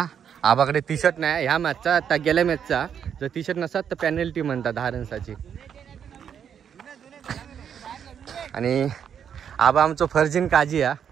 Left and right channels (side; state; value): left; quieter; 8.2 dB